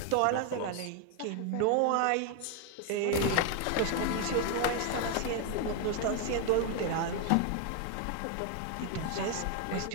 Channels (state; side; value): different; both; correlation 0.01